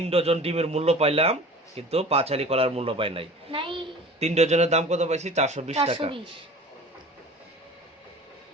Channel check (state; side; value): normal; both; correlation 0.41